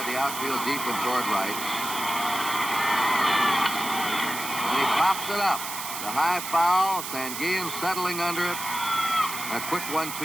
the outfield deep and toward right. And he pops it up. The high foul, Sanguillen settling under it. A quick 1-2-3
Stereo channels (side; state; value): right; noise; hiss, 7 dB below the sound